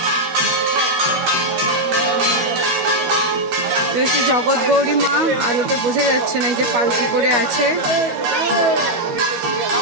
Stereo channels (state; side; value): late; left; 13 ms